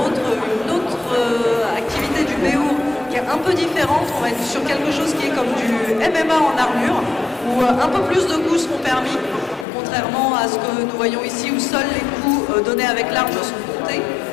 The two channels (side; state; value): right; drops out; at 9.7 s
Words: autre activité du BO qui est un peu différente. On va être sur quelque chose qui est comme du MMA en armure, où un peu plus de coups seront permis, contrairement à ce que nous voyons ici, où seuls les coups donnés avec l'arme sont comptés.